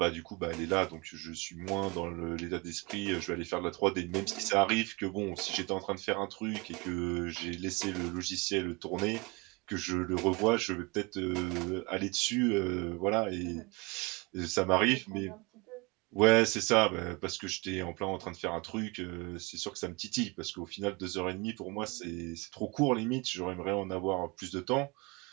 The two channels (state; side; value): quieter; left; 27.1 dB